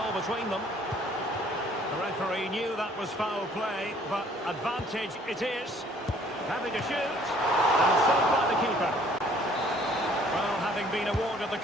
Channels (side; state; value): both; normal; correlation 0.58